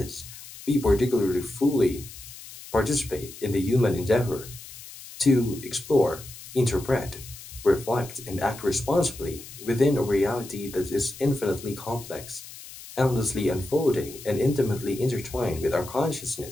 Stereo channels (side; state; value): left; noise; hiss, 15 dB below the sound